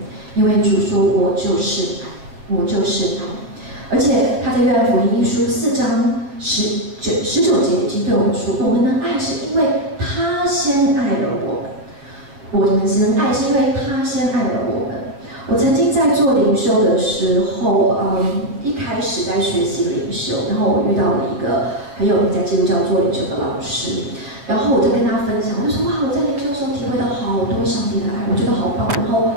因为主说：“我就是爱，我就是爱。”而且他在约翰福音一书4章19节已经对我们说：“我们能爱是因为他先爱了我们，我们能爱是因为他先爱了我们。”我曾经在做灵修的时候，一开始在学习灵修，然后我遇到了一个很有名在基督教做灵修的老师，然后我就跟他分享，我就说：“哇，我在灵修的时候体会到好多上帝的爱，我觉得好棒。”然后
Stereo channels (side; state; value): left; late; 7.3 ms